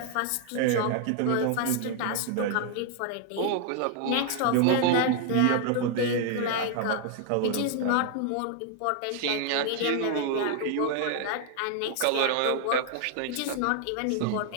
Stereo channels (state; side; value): different; both; correlation 0.00